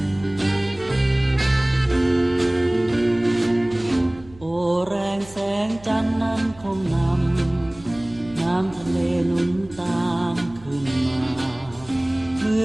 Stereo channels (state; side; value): noise; right; hum, 22 dB below the sound